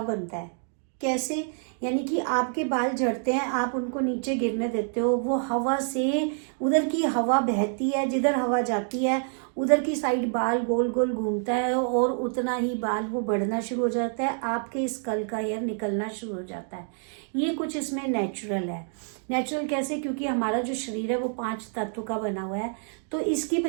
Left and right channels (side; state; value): left; silent; 58 dB below the other